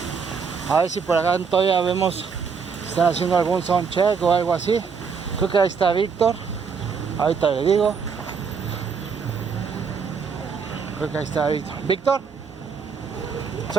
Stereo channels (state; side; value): quieter; left; 5.9 dB